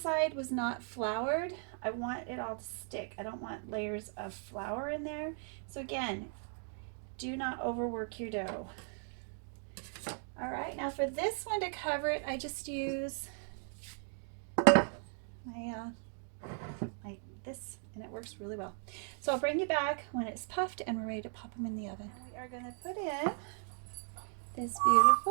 was not floured. I want it all to stick. I don't want layers of flour in there. So again, do not overwork your dough. All right, now for this one to cover it, I just use this, and it works really well. So I'll bring you back when it's puffed and we're ready to pop them in the oven. And we are going to put in this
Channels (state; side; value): silent; left; 53 dB below the other